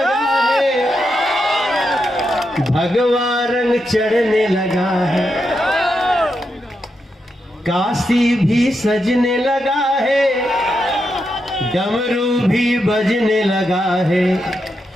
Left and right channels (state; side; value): normal; both; correlation 0.84